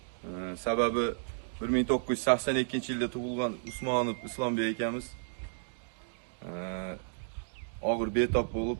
Sababi 1982-yilda tug'ilgan Usmonov Islombek akamiz og'ir betob bo'lib,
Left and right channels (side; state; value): left; silent; digital silence